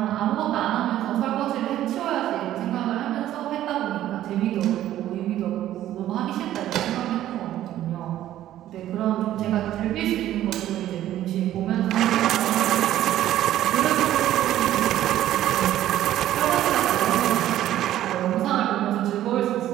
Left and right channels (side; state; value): left; quieter; 12.9 dB